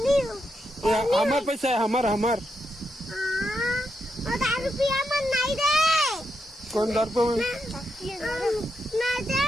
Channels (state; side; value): normal; both; correlation 0.83